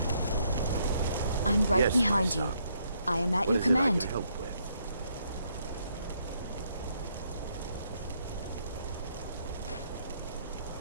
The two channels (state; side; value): inverted; both; correlation -0.73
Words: I'm right Yes, behind you. I am at your command. Help with?